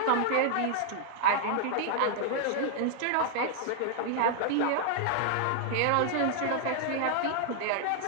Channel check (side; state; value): both; different; correlation 0.00